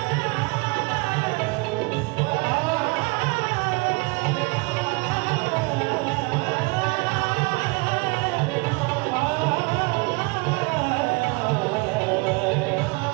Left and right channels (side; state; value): left; quieter; 27.4 dB